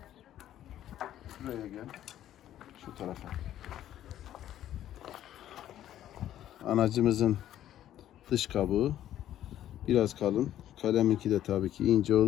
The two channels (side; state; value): right; quieter; 12.0 dB